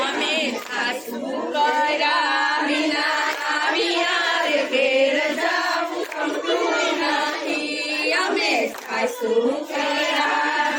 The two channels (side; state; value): both; identical; correlation 1.00